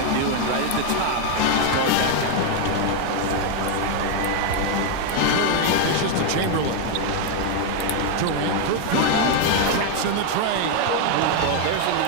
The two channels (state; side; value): different; both; correlation 0.01